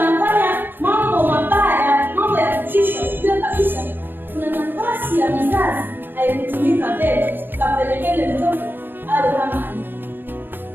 mambo mabaya, mambo ya kutisha, ujue kabisa kuna nafasi ya mzazi haikutumika mbele ikapelekele mtoto awe kama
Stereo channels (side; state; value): left; late; 0.097 ms